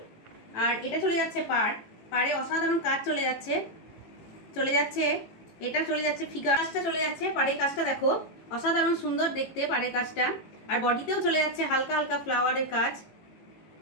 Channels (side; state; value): right; late; 18 ms